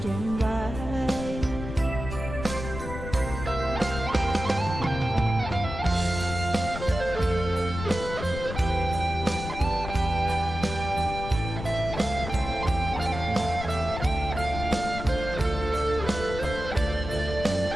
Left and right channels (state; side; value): noise; left; rumble, 8 dB below the sound